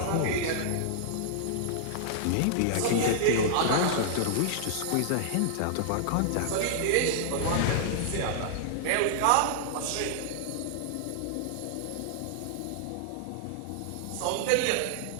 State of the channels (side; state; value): both; different; correlation -0.01